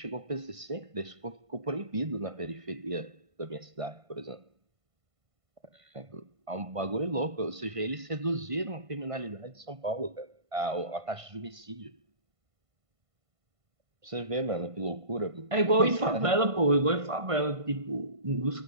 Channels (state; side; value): late; left; 1.5 ms